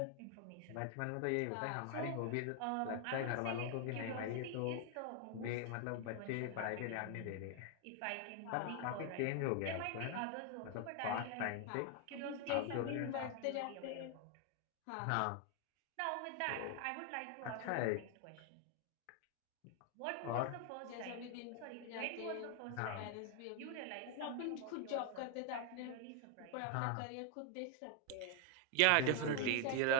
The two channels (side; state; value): both; different; correlation 0.00